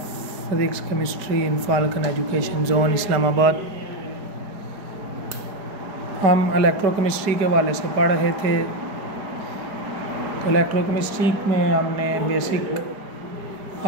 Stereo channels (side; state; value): left; late; 4.8 ms